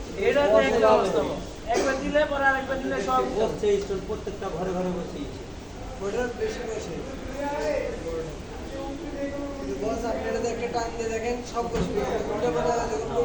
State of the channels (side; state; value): both; identical; correlation 1.00